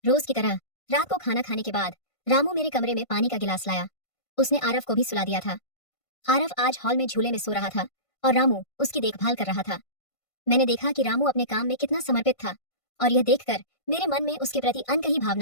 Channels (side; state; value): right; late; 1.5 ms